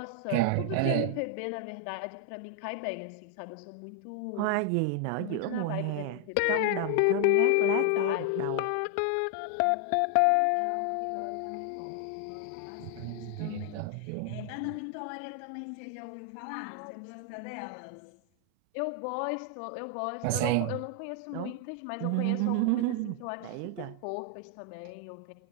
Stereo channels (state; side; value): different; both; correlation 0.00